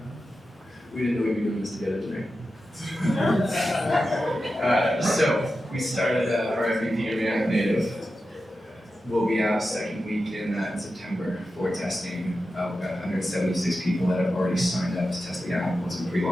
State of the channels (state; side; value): normal; both; correlation 0.91